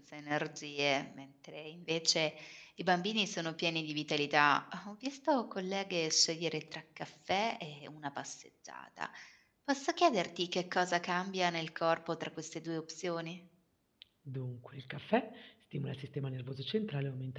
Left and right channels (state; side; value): identical; both; correlation 1.00